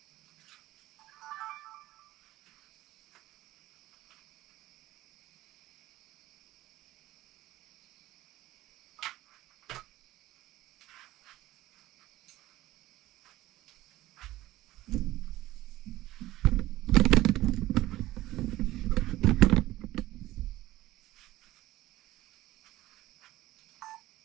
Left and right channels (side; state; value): left; quieter; 16.4 dB